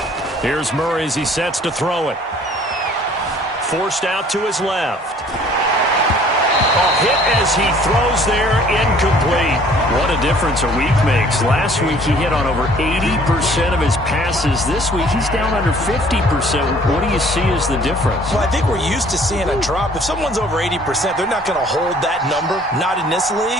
Here's Murray as he sets to throw it. Forced out to his left. A hit as he throws there, incomplete. What a difference a week makes. Last week he hit on over 80% of his passes. This week he's down under 50%. What do you see as the difference? Well, I think we're used to seeing a drop. If someone's over 80%, they're not going to hold that number, not in this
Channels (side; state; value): both; normal; correlation 0.55